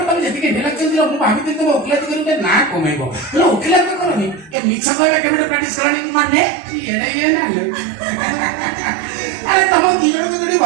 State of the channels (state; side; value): drops out; left; at 4.5 s